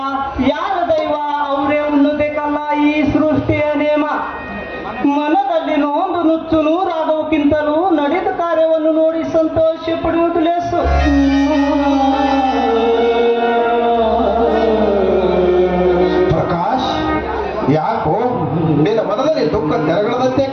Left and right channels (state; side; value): identical; both; correlation 1.00